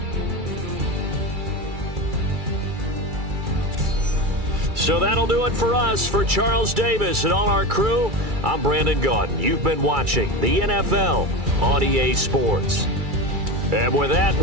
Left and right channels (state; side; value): late; left; 2.3 ms